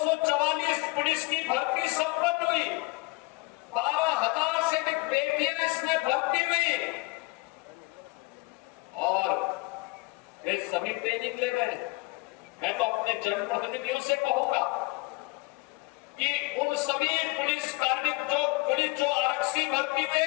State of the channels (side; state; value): right; quieter; 25.0 dB